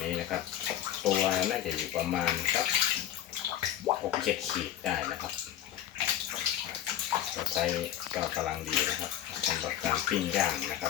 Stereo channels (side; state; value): right; quieter; 11.7 dB